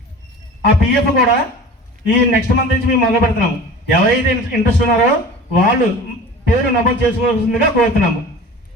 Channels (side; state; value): both; normal; correlation 0.39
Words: ఆ పిఎఫ్ కూడా ఈ నెక్స్ట్ మంత్ నుంచి మేము మొదలు పెడుతున్నాము. ఎవరైతే ఇంట్రెస్ట్ ఉన్నారో వాళ్ళు పేరు నమోదు చేసుకోవాల్సిందిగా కోరుతున్నాము.